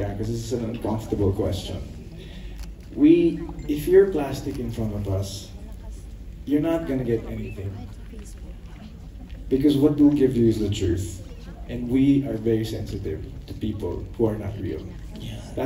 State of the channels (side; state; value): both; identical; correlation 1.00